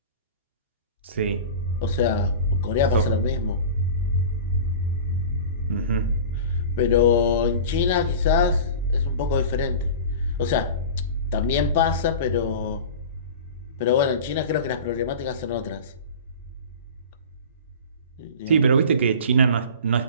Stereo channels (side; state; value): both; inverted; correlation -0.34